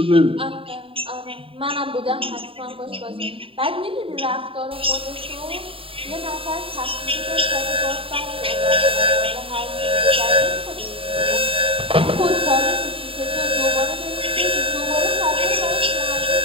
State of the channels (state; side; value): late; left; 0.26 ms